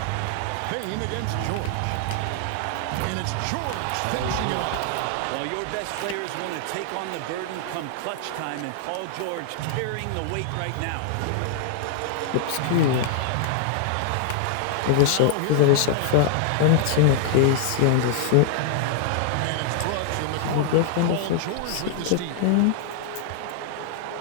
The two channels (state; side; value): different; both; correlation -0.01